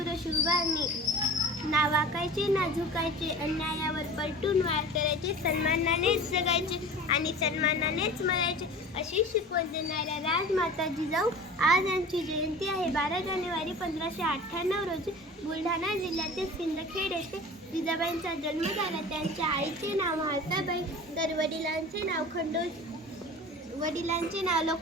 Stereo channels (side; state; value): both; normal; correlation 0.38